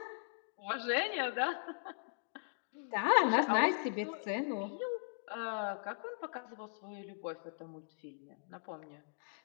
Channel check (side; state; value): right; silent; digital silence